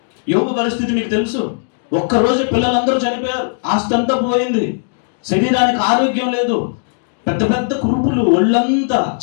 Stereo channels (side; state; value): right; silent; digital silence